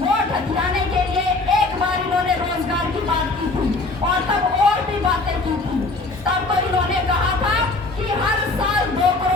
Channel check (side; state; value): right; quieter; 3.2 dB